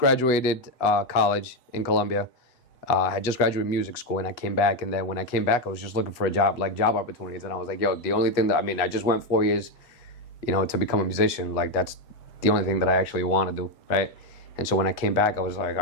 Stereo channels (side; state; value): right; late; 8.1 ms